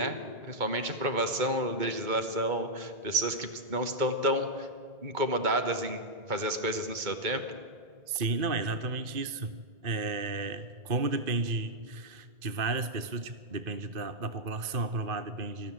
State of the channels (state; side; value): late; left; 2.2 ms